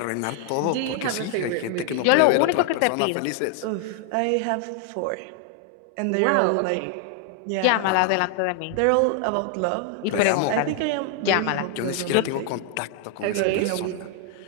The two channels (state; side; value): different; both; correlation 0.00